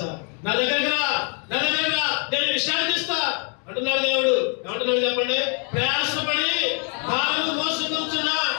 నా దగ్గర నేను విశ్రాంతిస్తా అంటున్నాడు దేవుడు. ఏమంటున్నాడు చెప్పండి? ప్రయాసపడి భారము మోసుకొంచున్న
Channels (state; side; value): quieter; right; 39.2 dB